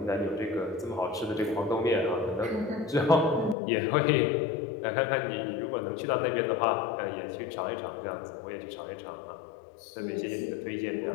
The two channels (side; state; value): right; drops out; at 3.6 s